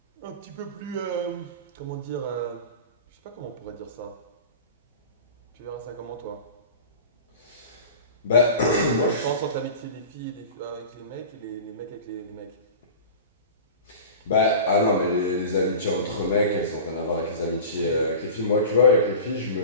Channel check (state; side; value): inverted; both; correlation -0.34